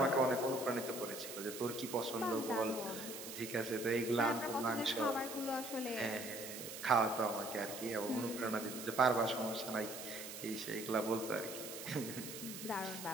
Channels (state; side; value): noise; right; hiss, 9 dB below the sound